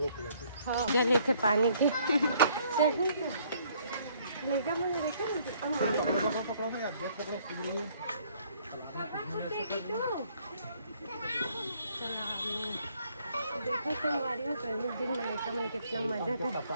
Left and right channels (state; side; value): inverted; both; correlation -0.63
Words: हाँ जले थे पानी की सही लेगा मैंने देखा देखो तो हमारी हो दिन में लेकर मैंने कितना मजा था